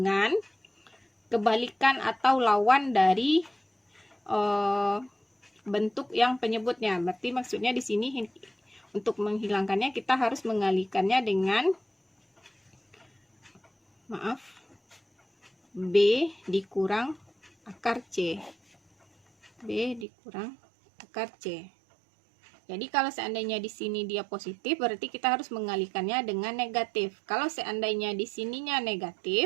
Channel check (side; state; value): left; drops out; at 20.1 s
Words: kebalikan atau lawan dari bentuk yang penyebutnya. Berarti maksudnya di sini untuk menghilangkannya kita harus mengalihkannya dengan B dikurang akar C. B dikurang akar C. Jadi kalau seandainya di sini dia positif, berarti kita harus mengalihkannya dengan negatif. Kalau seandainya di sininya